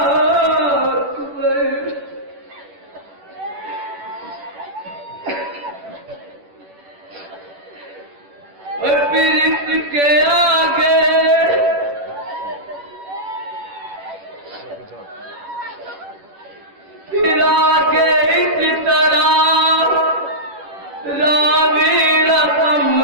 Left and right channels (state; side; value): late; left; 10 ms